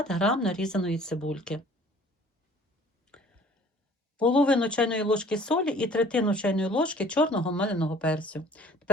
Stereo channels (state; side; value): normal; both; correlation 0.52